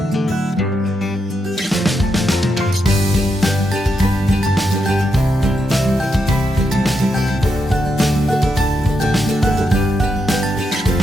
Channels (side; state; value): both; normal; correlation 0.82